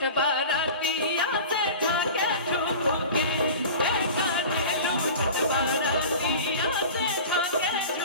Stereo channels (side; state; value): both; inverted; correlation -0.36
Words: बाराती या से झाके झूके, हे करेलू छठ बाराती या से झाके